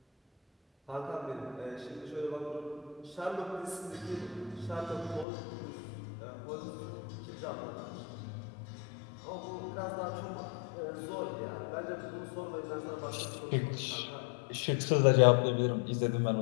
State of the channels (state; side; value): drops out; right; at 5.2 s